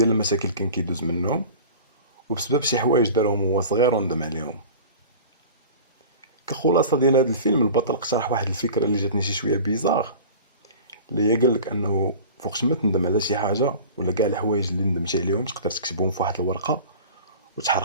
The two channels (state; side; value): inverted; both; correlation -0.38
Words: المشاكل كان كيدوز منهم وبسبب شي حوايج دارهم هو صغير وندم عليهم. كخلاصه ديال هذا الفيلم، البطل اقترح واحد الفكره اللي جاتني شي شويه بيزار، اللي هي قال لك انه فوقش ما تندم على شي حاجه ولا كاع الحوايج اللي ندمتي عليهم تقدر تكتبهم في واحد الورقه